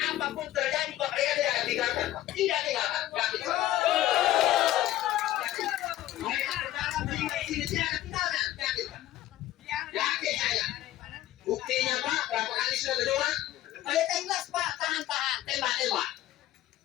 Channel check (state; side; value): quieter; right; 14.3 dB